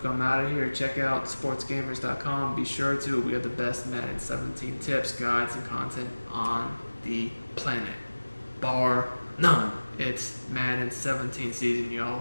I'm out of here. Check out sportsgamers.com. Be sure to. We have the best Madden 17 tips, guides, and content on the planet. Bar none. It's Madden 17 season,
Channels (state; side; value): inverted; both; correlation -1.00